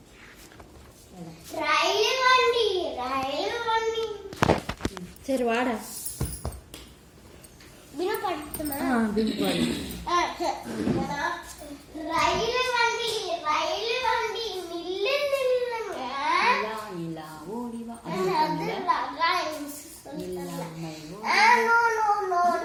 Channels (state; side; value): identical; both; correlation 1.00